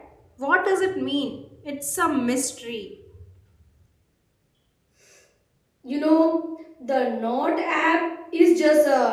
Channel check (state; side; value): identical; both; correlation 1.00